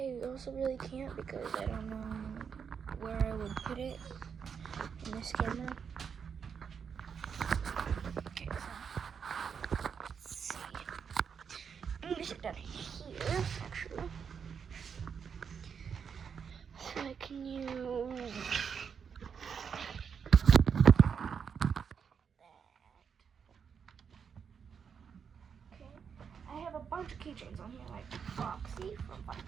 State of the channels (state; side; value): quieter; left; 6.8 dB